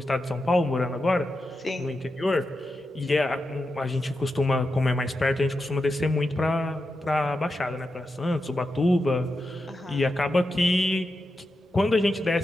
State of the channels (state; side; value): normal; both; correlation 0.88